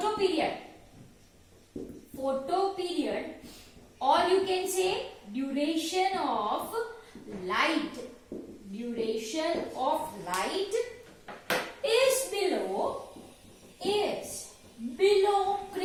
photo period, or you can say duration of light is below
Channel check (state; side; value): identical; both; correlation 1.00